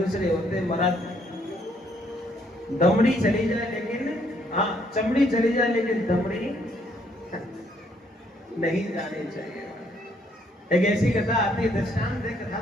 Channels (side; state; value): both; normal; correlation 0.69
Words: होते हैं महाराज, दमड़ी चली जाए लेकिन, हाँ चमड़ी चली जाए लेकिन दमड़ी नहीं जानी चाहिए। एक ऐसी कथा आती है, दृष्टांत कथा